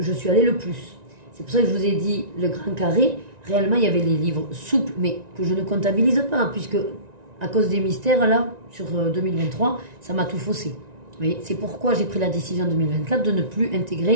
suis allée le plus. C'est pour ça que je vous ai dit le grand carré. Réellement, il y avait les livres souples, mais que je ne comptabilise pas, puisque à cause des mystères, là, sur 2023, ça m'a tout faussé. C'est pourquoi j'ai pris la décision en 2024 de ne plus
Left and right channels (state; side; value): late; left; 1.9 ms